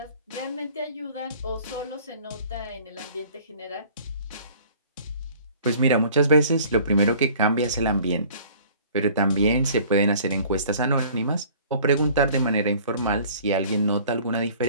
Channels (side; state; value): both; inverted; correlation -0.51